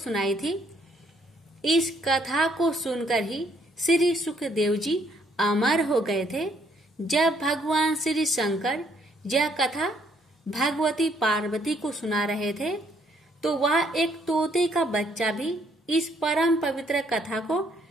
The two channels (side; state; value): both; normal; correlation 0.68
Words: थी। इस कथा को सुनकर ही श्री सुखदेव जी अमर हो गए थे। जब भगवान श्री शंकर यह कथा भगवती पार्वती को सुना रहे थे तो वह एक तोते का बच्चा भी इस परम पवित्र कथा को